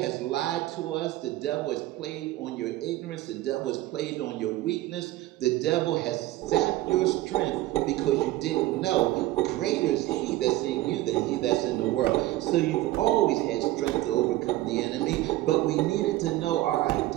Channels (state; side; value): quieter; left; 16.6 dB